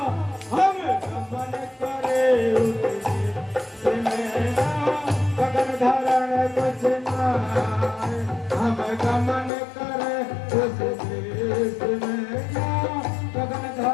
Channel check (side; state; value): right; drops out; at 9.5 s